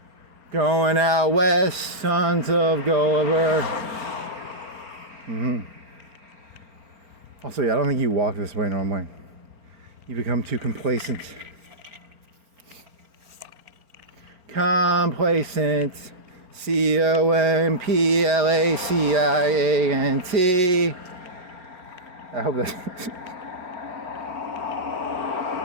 Going out west, sons of Gulliver. Also, yeah, I don't think you walk this way normally. You become too complacent. Complacent. C-O-M-P-L-A-C-I-A-N-T. I hope that's...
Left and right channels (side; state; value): left; late; 4.4 ms